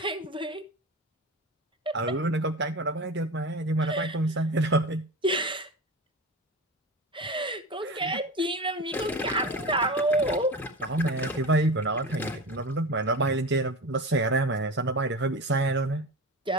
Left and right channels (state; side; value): normal; both; correlation 0.28